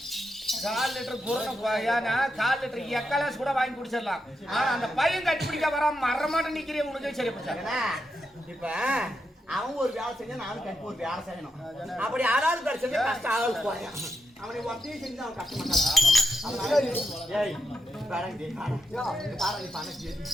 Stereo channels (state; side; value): normal; both; correlation 0.84